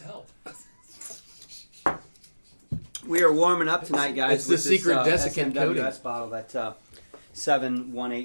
help. We are warming up tonight, guys. It's the with secret this, desiccant SMWS coating. bottle, that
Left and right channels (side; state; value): both; inverted; correlation -1.00